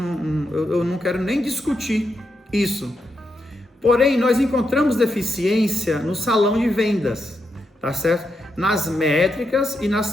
não quero nem discutir isso. Porém, nós encontramos deficiência no salão de vendas, tá certo? Nas métricas e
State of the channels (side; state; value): both; normal; correlation 0.83